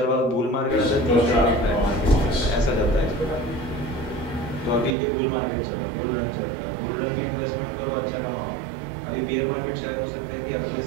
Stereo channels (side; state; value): left; drops out; at 5.0 s